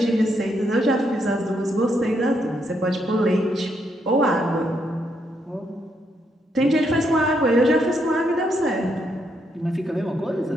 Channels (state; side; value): normal; both; correlation 0.77